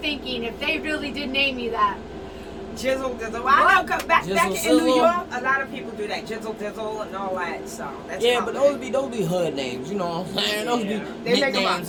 if they really did name you that. Jizzle Dizzle. I know, back in Jizzle New Sizzle. York, a lot of people do that. Jizzle Dizzle and all that. So that's Yeah, common. but those be hood names, you know what I'm saying? Those Yeah. be They make 'em nicknames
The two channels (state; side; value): identical; both; correlation 1.00